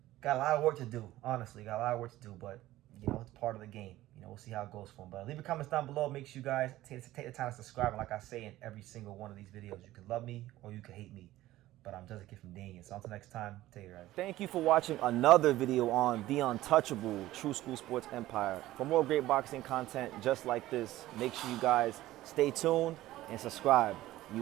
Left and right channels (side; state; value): left; quieter; 15.7 dB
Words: got a lot of work to do, honestly. Got a lot of work to do, but, you know, it's part of the game. You know, we'll see how it goes for him. But leave your comments down below. Make sure you guys take the time to subscribe. And like I say in every single one of these videos, you can love me or you can hate me. But I'm just a kid from Daniel. So until next time, take care. Thank you for watching another video on the untouchable True School Sports Empire. For more great boxing content just like this, make sure you guys stay tuned and subscribe.